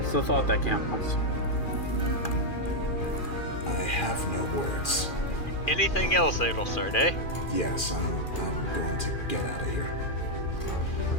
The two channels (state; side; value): late; right; 2.4 ms